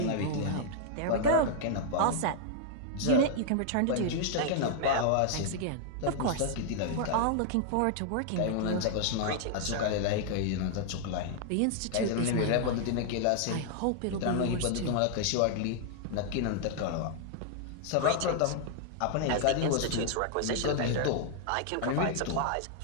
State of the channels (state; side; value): different; both; correlation 0.00